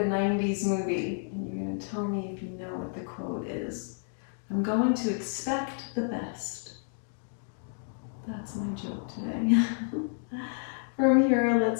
movie, and you're going to tell me if you know what the quote is. I'm going to expect the best. That's my joke today. From here,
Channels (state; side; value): silent; right; 58 dB below the other